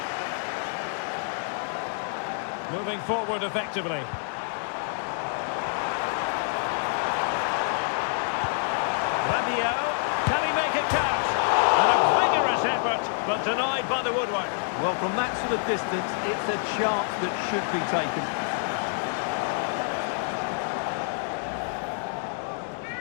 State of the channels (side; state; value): right; silent; 60 dB below the other